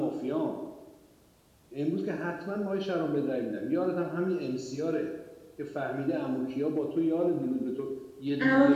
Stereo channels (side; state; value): both; identical; correlation 1.00